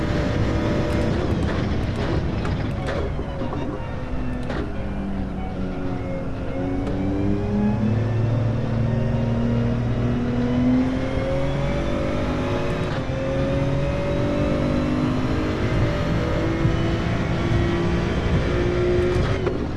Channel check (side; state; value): both; identical; correlation 1.00